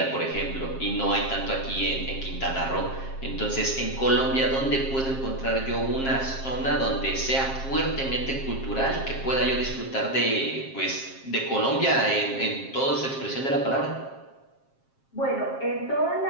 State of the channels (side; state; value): right; late; 7.5 ms